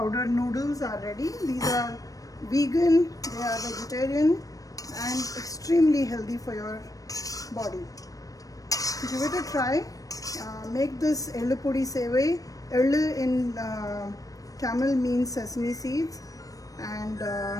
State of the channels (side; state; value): right; late; 0.17 ms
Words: noodles are ready. These are vegan, they are vegetarian, and extremely healthy for your body. Give it a try. Make this Ellu Podi Sevai. Ellu in Tamil means sesame seeds. And